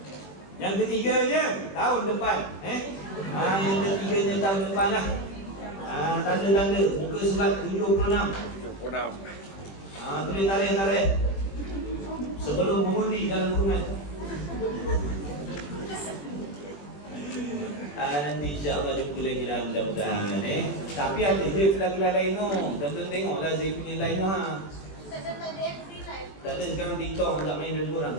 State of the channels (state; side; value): late; right; 21 ms